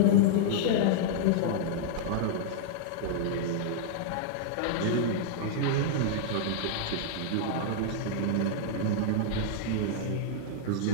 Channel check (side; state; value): both; different; correlation -0.01